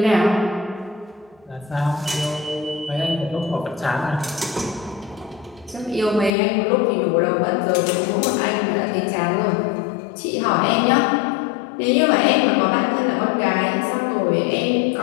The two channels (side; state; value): right; drops out; at 6.3 s